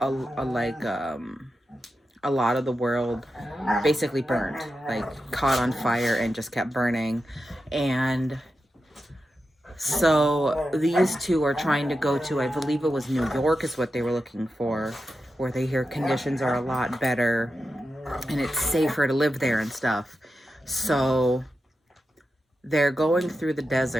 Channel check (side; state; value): both; normal; correlation 0.90